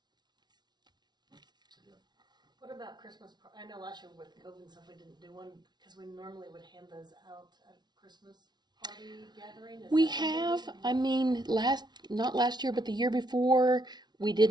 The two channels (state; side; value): late; left; 0.20 ms